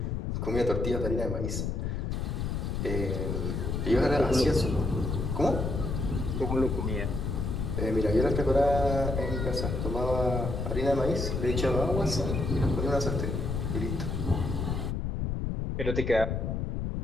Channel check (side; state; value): left; noise; rumble, 1 dB below the sound